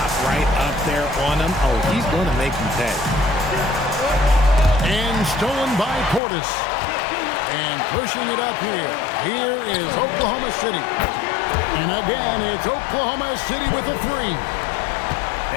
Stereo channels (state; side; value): drops out; right; at 6.2 s